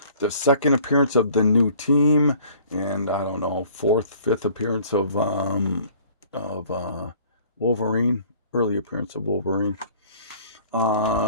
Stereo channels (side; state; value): both; inverted; correlation -0.53